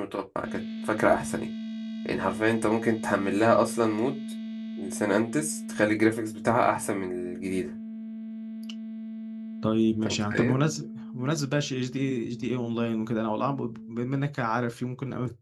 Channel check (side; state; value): both; identical; correlation 1.00